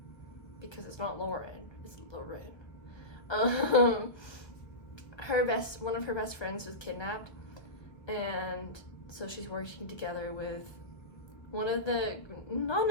because it's not Lauren, it's Lauren, one of her best friends was kidnapped, and so she's working together with one of the not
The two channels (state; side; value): late; right; 1.3 ms